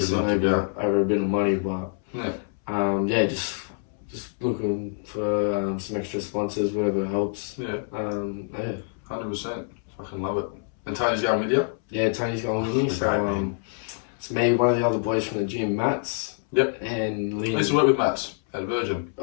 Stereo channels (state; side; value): silent; right; 61 dB below the other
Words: it over a bit of money. But just looking for some extra sponsors, whatever helps. 100%. Fucking love it. And Tony's going with you? Yeah, Tony's going with me. So it's me, one of the other boys from the gym, Mats. Yep. And Liam. I used to work with Mats at Virgin.